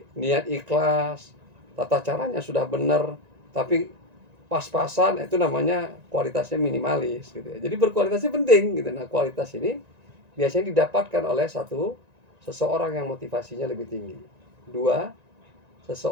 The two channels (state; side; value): late; left; 1.9 ms